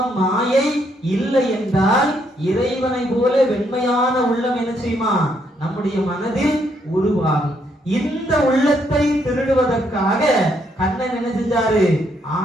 மாயை இல்லை என்றால் இறைவனை போல வெண்மையான உள்ளம் என்ன செய்யுமா, நம்முடைய மனதில் உருவாகும். இந்த உள்ளத்தை திருடுவதற்காக கண்ணன் என்ன செஞ்சாரு,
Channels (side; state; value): both; normal; correlation 0.73